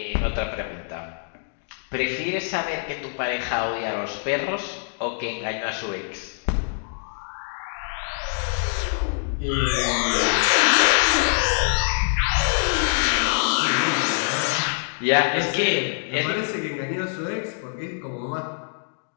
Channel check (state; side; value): silent; right; digital silence